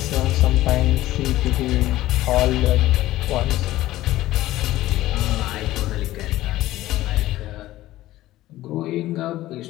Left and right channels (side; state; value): right; quieter; 15.7 dB